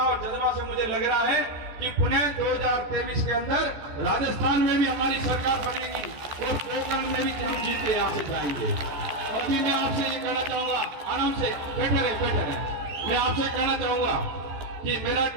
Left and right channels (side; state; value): left; late; 14 ms